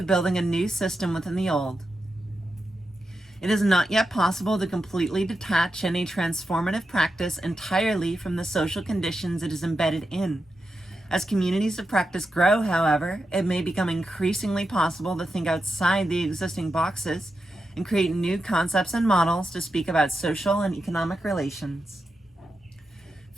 building a new system within the old. It is not yet possible to completely detach any transformative practice entirely from the social conditions it is embedded in. As communities of practice grow, however, it may become increasingly possible to think outside the existing boxes and create new concepts and models to speak about social and economic relations.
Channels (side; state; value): both; normal; correlation 0.88